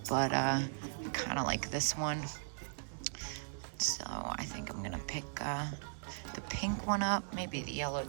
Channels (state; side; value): silent; left; digital silence